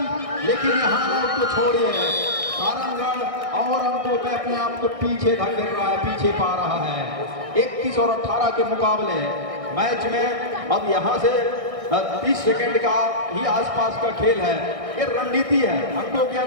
लेकिन यहाँ लोग तो छोड़िए, सारंगगढ़ और अंकों पे अपने आप को पीछे धकेल रहा है, पीछे पा रहा है। 31 और 18 के मुकाबले मैच में अब यहाँ से 30 सेकंड का ही आसपास का खेल है। ये रणनीति है, अंकों के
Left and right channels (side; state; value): left; late; 1.6 ms